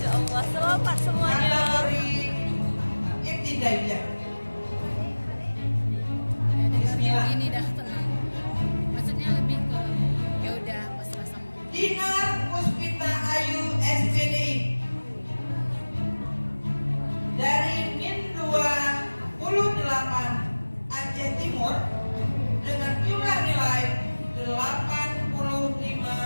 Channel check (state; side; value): inverted; both; correlation -1.00